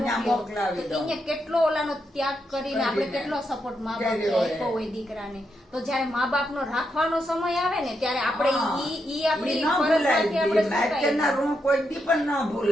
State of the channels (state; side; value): normal; both; correlation 0.82